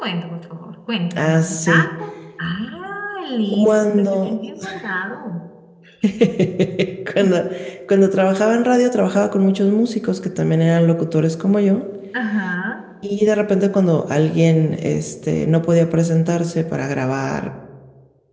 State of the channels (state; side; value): identical; both; correlation 1.00